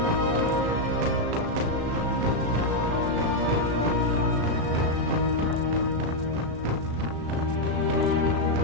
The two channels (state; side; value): late; left; 36 ms